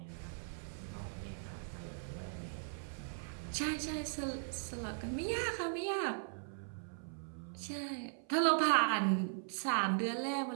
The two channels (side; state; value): left; silent; 52 dB below the other